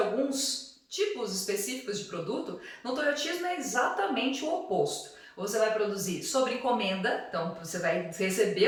tipos específicos de produto, no toyotismo é exatamente o oposto. Você vai produzir sobre encomenda, então você vai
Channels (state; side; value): identical; both; correlation 1.00